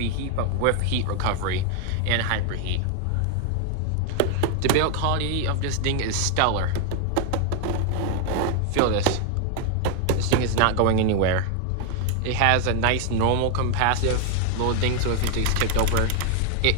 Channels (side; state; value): both; different; correlation 0.01